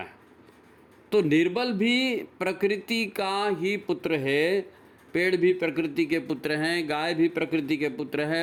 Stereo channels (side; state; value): both; identical; correlation 1.00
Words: तो निर्बल भी प्रकृति का ही पुत्र है, पेड़ भी प्रकृति के पुत्र हैं, गाय भी प्रकृति के पुत्र